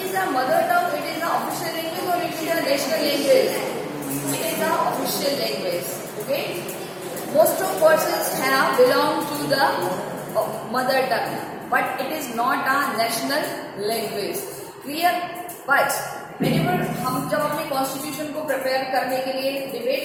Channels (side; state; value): both; identical; correlation 1.00